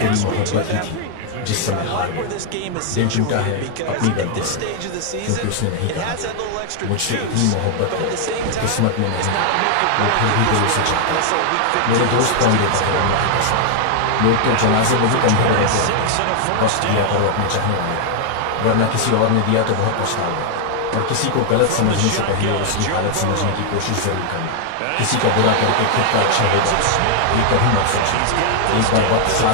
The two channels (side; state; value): both; different; correlation 0.00